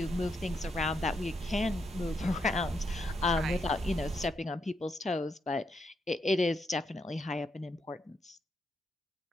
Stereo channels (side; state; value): both; normal; correlation 0.80